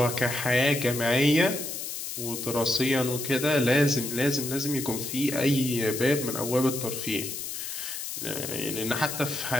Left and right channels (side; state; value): left; noise; hiss, 6 dB below the sound